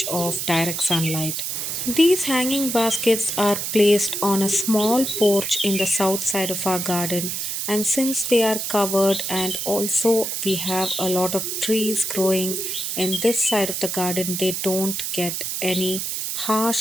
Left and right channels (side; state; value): right; noise; hiss, 3 dB below the sound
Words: of direct sunlight. These hanging baskets are placed on a small porch in the south side of our garden, and since they are covered, and also we have a lot of trees growing in this side of the garden, they don't get any